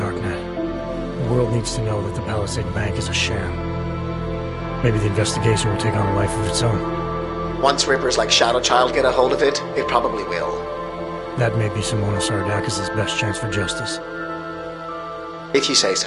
The world needs to know that the Palisade Bank is a sham. Maybe the investigation will take on a life of its own. Once rippers like Shadow Child get a hold of it, it probably will. That may be Simona Saradakis' best chance for justice. If you say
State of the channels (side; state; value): both; identical; correlation 1.00